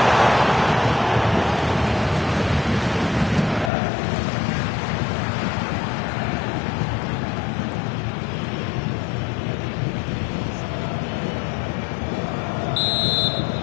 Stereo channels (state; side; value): drops out; right; at 3.7 s